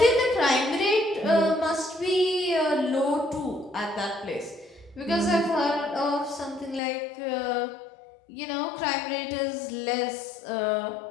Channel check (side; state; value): right; drops out; at 6.8 s